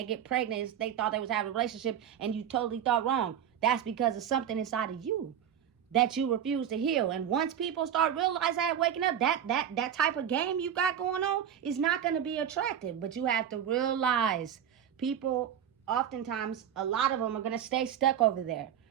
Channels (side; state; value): left; quieter; 9.3 dB